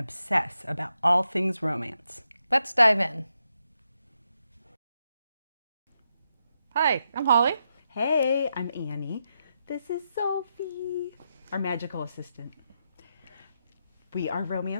about all things romance. Let's dive in. Hi, I'm Holly. Hey, I'm Annie. This is Sophie, our magical assistant. We are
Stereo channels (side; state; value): both; inverted; correlation -0.83